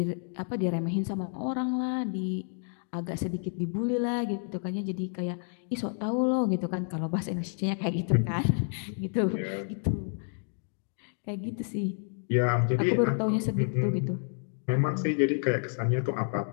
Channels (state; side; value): silent; right; 58 dB below the other